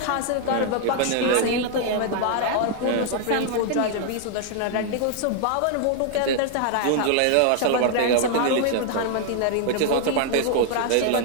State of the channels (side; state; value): both; different; correlation 0.00